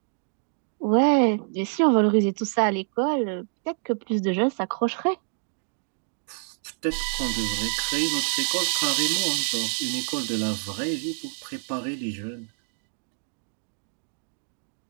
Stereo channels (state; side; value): silent; left; digital silence